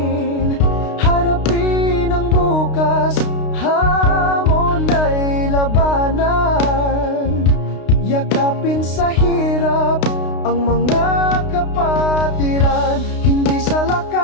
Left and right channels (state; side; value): late; right; 32 ms